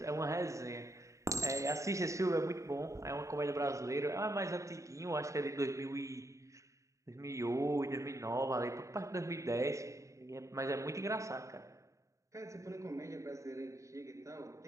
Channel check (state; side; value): late; left; 0.15 ms